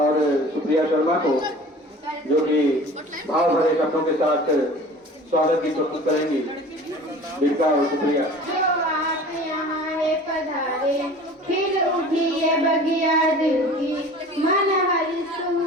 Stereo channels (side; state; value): both; normal; correlation 0.42